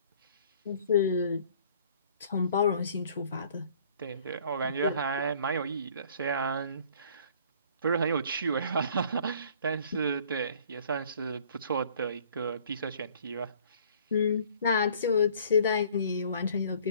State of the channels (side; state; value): both; inverted; correlation -0.54